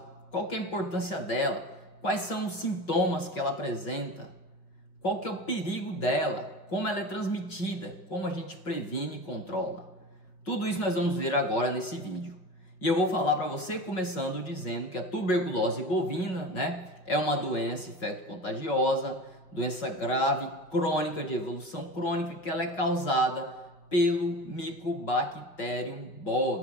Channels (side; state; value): right; late; 5.2 ms